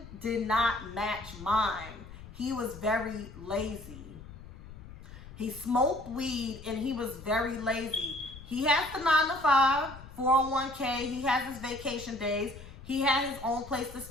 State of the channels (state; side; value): noise; left; rumble, 16 dB below the sound